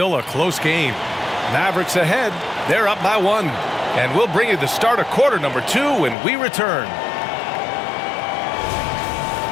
a close game. Mavericks ahead. They're up by 1. And we'll bring you the start of quarter number 2 when we return.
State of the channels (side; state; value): right; drops out; at 6.2 s